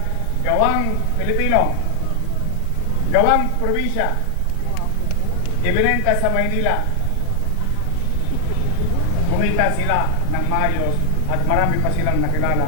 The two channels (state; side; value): different; both; correlation 0.00